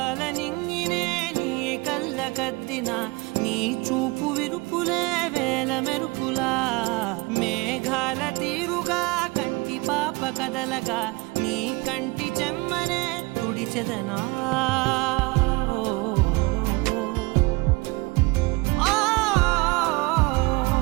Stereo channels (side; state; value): left; quieter; 24.8 dB